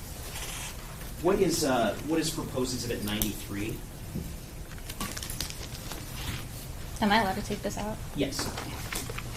What is Proposed Exhibit 93? Am I allowed to take this out? Yes.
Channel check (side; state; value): both; identical; correlation 1.00